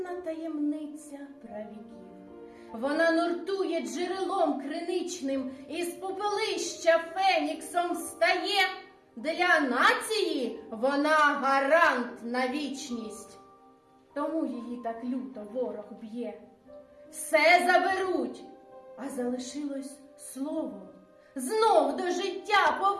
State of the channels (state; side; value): identical; both; correlation 1.00